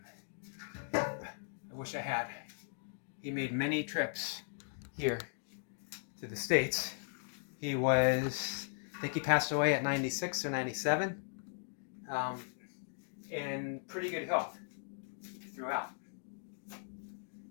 I wish I had. He made many trips here to the States. He was, I think he passed away at 96 or 97, in pretty good health throughout.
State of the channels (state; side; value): silent; right; digital silence